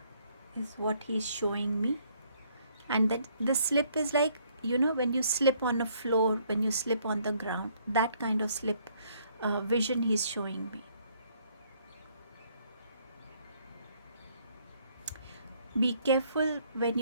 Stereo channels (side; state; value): both; inverted; correlation -0.66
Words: is what he's showing me, and that the slip is like, you know, when you slip on a floor, when you slip on the ground, that kind of slip vision he's showing me. Be careful when